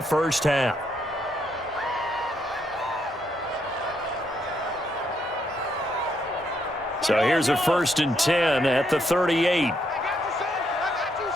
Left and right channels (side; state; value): both; normal; correlation 0.75